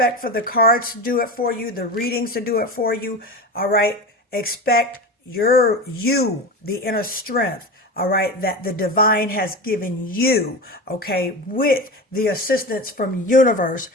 for the cards to do it for you, the readings to do it for you, all right? Expect the inner strength, all right, that the divine has given you, okay, with the assistance from universe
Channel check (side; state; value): both; normal; correlation 0.26